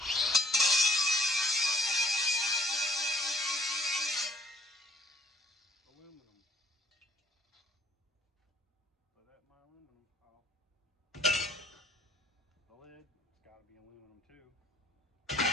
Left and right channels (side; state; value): both; normal; correlation 0.60